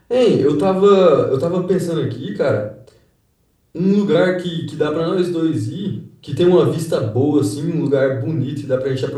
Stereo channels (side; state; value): both; identical; correlation 1.00